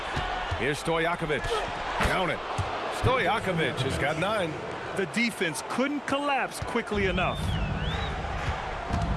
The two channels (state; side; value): identical; both; correlation 1.00